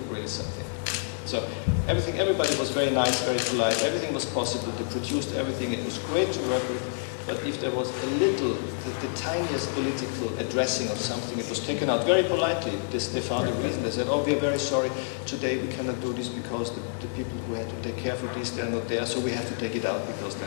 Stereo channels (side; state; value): right; silent; digital silence